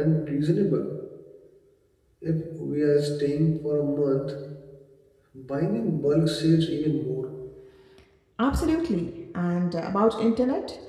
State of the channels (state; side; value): identical; both; correlation 1.00